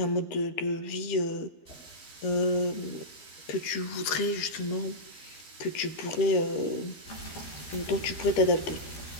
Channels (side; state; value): right; late; 13 ms